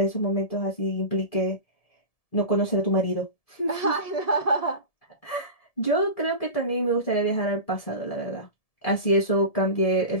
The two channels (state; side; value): late; right; 1.7 ms